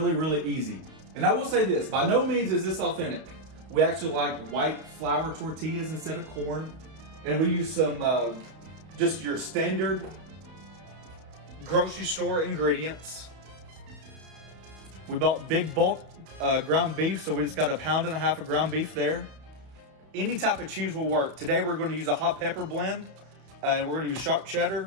really easy. And I will say this, by no means is this authentic. We actually like white flour tortillas instead of corn. And we use some, just your standard grocery store ingredients. We bought big bulk ground beef, so we just got 1.5 pounds of ground beef there. Any type of cheese will work. Today we're going to use a hot pepper blend, and we're going to use sharp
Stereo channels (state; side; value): late; left; 31 ms